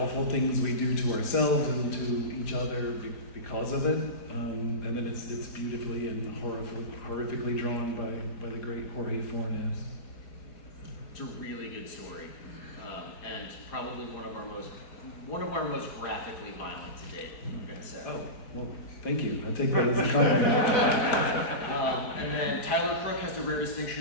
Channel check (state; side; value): late; right; 4.9 ms